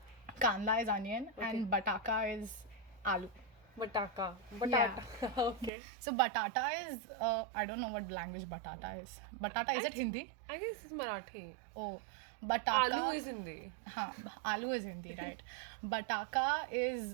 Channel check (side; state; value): left; drops out; at 5.7 s